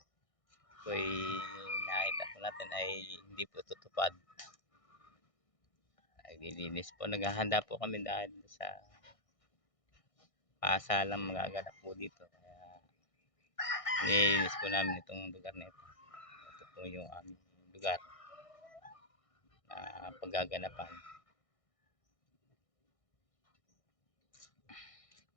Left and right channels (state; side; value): late; right; 1.6 ms